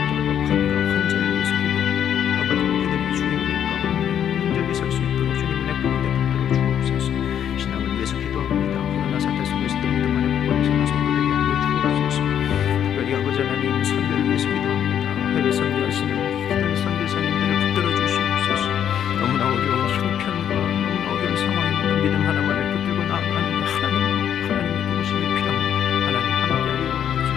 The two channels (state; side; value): quieter; right; 9.4 dB